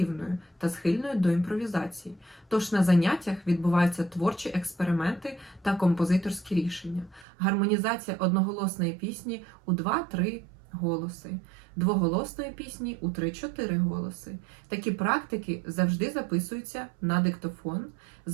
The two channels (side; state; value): left; drops out; at 7.2 s